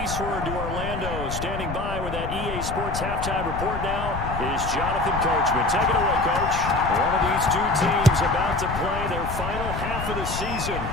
eastward to Orlando. Standing by with that EA Sports halftime report now is Jonathan Coachman. Take it away, Coach. One of these two teams about to play their final half of the season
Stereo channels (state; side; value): noise; left; rumble, 6 dB below the sound